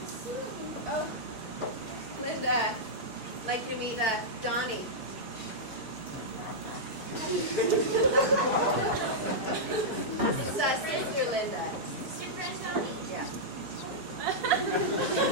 Oh, Linda, like to meet Donnie. It's Sister Linda. Sister friend Donnie? Yeah.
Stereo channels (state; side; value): late; left; 4.6 ms